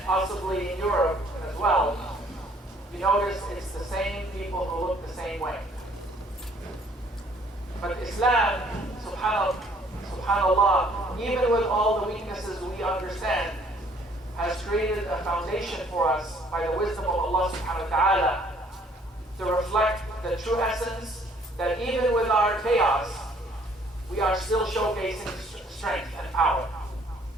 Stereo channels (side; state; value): both; normal; correlation 0.61